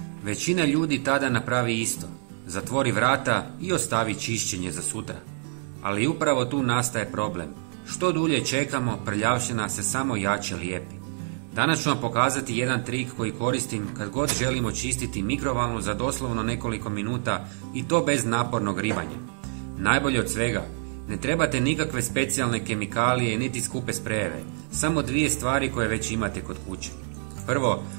Većina ljudi tada napravi isto. Zatvori vrata i ostavi čišćenje za sutra. Ali upravo tu nastaje problem. Što dulje čekamo, prljavština se samo jače lijepi. Danas ću vam pokazati jedan trik koji koristim kad god želimo čistiti mikrovalnu za doslovno nekoliko minuta i to bez napornog ribanja. Najbolje od svega, ne trebate nikakve specijalne kemikalije niti skupe sprejeve, samo dvije stvari koje već imate kod kuće. Prvo,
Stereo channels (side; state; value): left; silent; 60 dB below the other